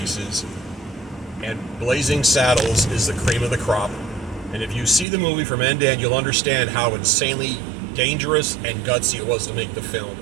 And Blazing Saddles is the cream of the crop. And if you see the movie from end to end, you'll understand how insanely dangerous and gutsy it was to make the film.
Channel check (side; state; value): left; drops out; at 5.1 s